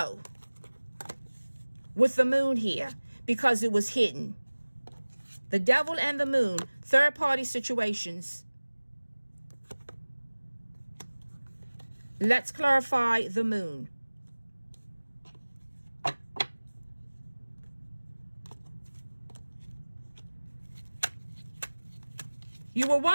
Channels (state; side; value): inverted; both; correlation -1.00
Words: with the Moon here because it was hidden. The Devil and the Moon, third-party situations. Let's clarify the Moon. You were